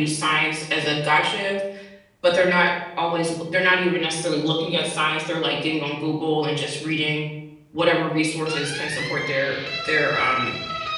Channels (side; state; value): both; identical; correlation 1.00